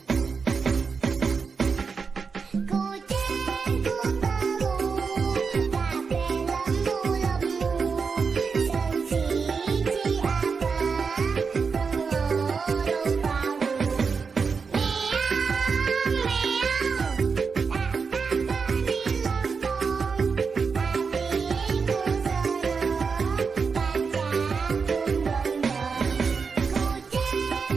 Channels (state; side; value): quieter; left; 5.3 dB